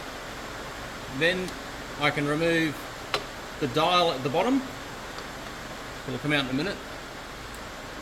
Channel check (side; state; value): both; identical; correlation 1.00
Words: Then I can remove the dial at the bottom. It'll come out in a minute.